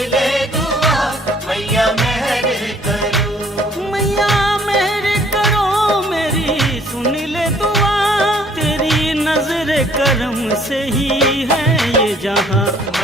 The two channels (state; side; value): normal; both; correlation 0.59